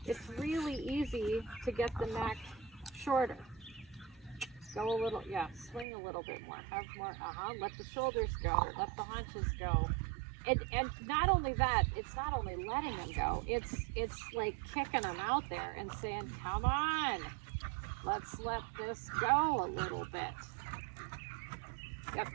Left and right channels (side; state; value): left; drops out; at 5.9 s